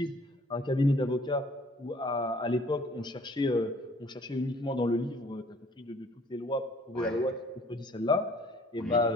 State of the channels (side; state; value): both; normal; correlation 0.56